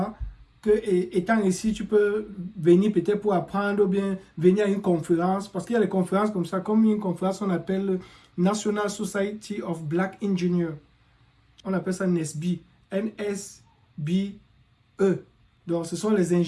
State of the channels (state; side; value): identical; both; correlation 1.00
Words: que étant ici, tu peux venir peut-être pour apprendre ou bien venir à une conférence. Parce qu'il y a des conférences comme ça, comme une conférence qu'on appelle National Society of Black Engineers. On appelle ça NSBE. N-S-B-E. Donc, ce sont les